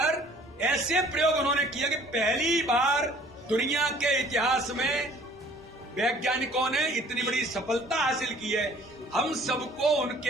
ऐसे प्रयोग उन्होंने किया कि पहली बार दुनिया के इतिहास में वैज्ञानिकों ने इतनी बड़ी सफलता हासिल की है। हम सबको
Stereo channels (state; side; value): normal; both; correlation 0.54